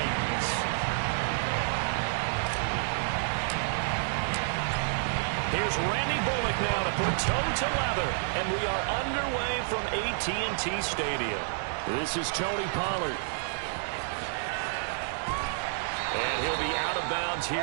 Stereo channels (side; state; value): left; silent; digital silence